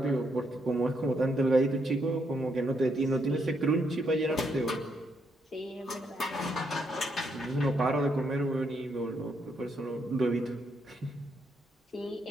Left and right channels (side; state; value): both; normal; correlation 0.77